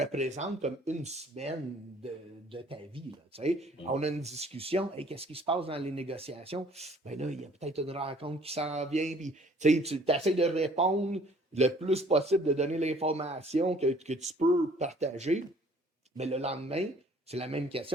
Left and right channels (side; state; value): both; normal; correlation 0.56